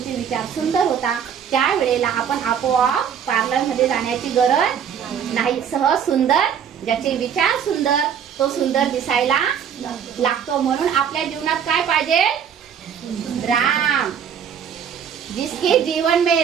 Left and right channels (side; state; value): left; quieter; 8.0 dB